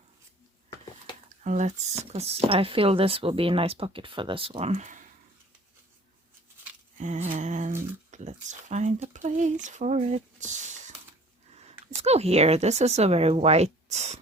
And let's, because I feel this will be a nice pocket for this one. And let's find a place for it. Let's go here. This is a very white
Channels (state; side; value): normal; both; correlation 0.50